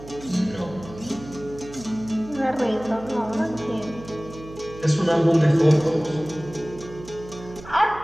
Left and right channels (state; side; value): noise; right; hum, 16 dB below the sound